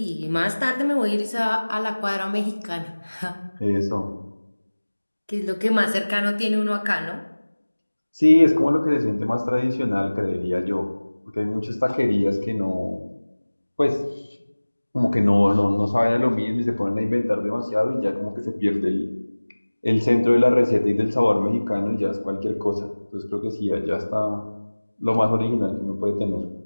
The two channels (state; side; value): inverted; both; correlation -1.00